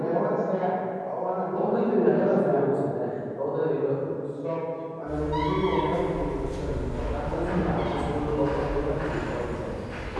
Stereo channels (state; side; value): identical; both; correlation 1.00